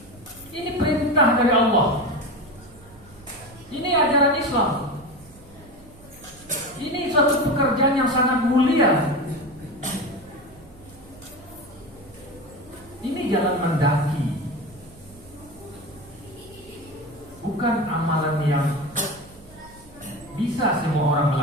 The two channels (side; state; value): right; noise; hum, 23 dB below the sound